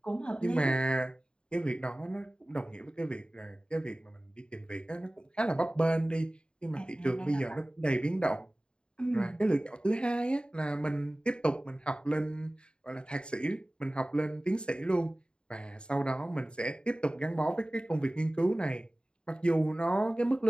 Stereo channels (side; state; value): right; late; 0.051 ms